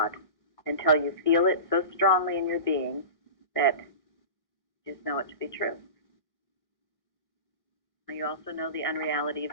until you feel it so strongly in your being that you just know it to be true. And you also know the unreality of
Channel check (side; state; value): right; late; 1.1 ms